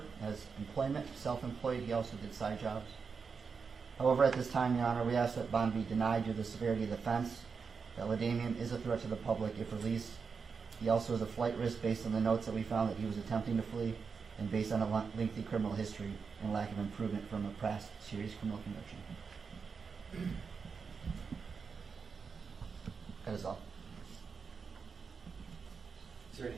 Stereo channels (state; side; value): quieter; left; 5.5 dB